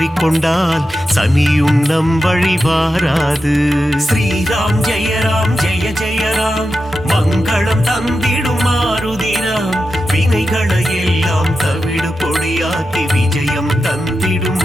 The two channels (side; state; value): both; normal; correlation 0.90